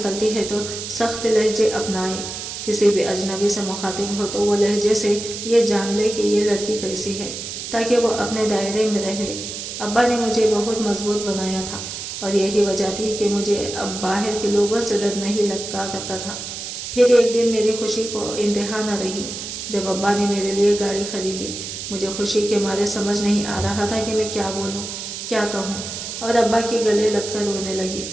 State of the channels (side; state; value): right; noise; hiss, 7 dB below the sound